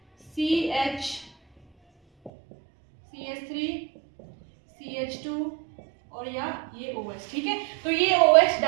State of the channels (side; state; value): left; drops out; at 2.3 s